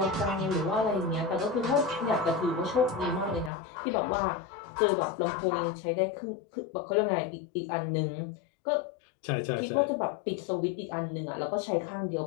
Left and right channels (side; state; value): right; drops out; at 3.5 s